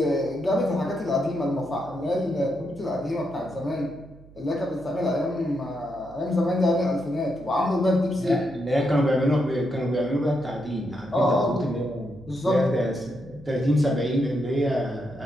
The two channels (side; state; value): right; noise; hum, 22 dB below the sound